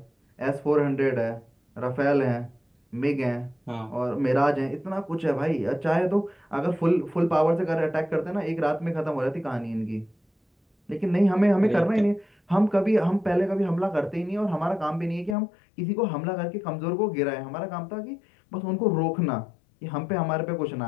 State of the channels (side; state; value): right; drops out; at 15.4 s